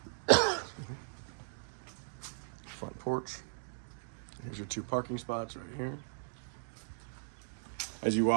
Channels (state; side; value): silent; left; digital silence